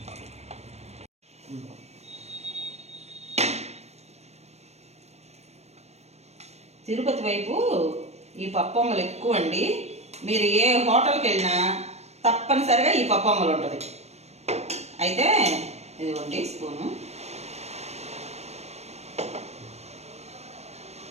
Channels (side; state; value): left; late; 0.31 ms